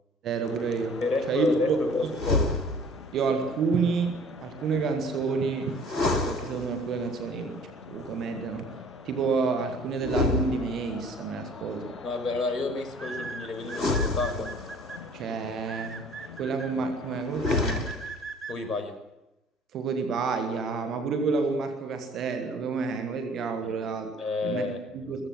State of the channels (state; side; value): normal; both; correlation 0.51